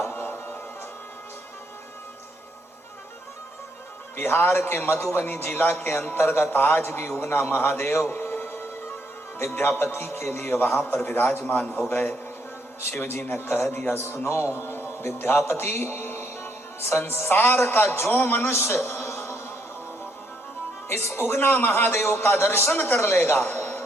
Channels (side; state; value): both; normal; correlation 0.73